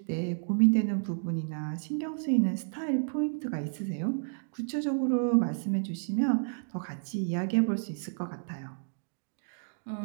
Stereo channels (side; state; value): left; silent; digital silence